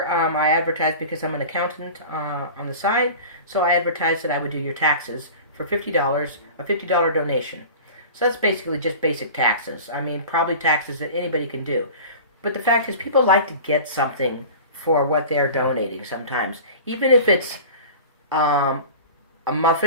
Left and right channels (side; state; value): both; inverted; correlation -0.37